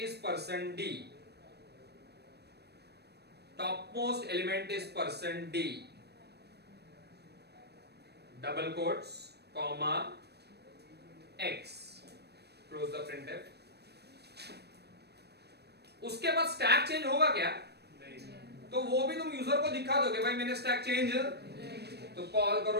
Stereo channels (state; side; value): late; left; 0.48 ms